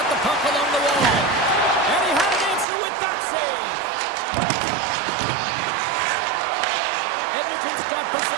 the puck along the wall. And he had an answer with that save. Edmonton's got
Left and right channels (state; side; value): drops out; left; at 2.7 s